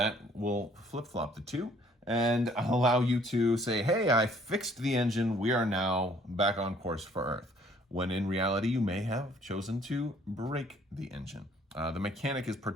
will flip-flop the 2. And allow you to say, hey, I fixed the engine. We are now back on course for Earth. When in reality, you may have chosen to break the engine. The mechanic is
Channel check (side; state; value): both; normal; correlation 0.60